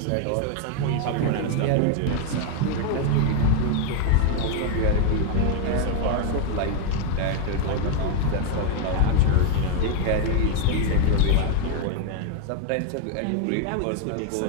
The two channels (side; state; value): both; different; correlation 0.01